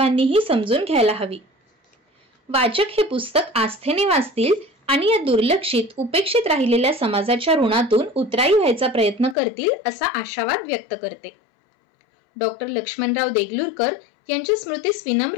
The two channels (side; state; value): right; drops out; at 9.3 s